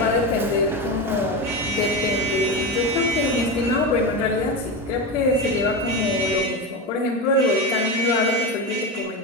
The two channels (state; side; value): normal; both; correlation 0.19